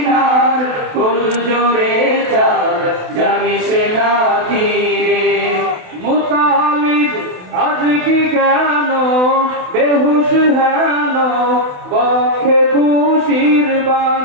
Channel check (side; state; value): left; late; 28 ms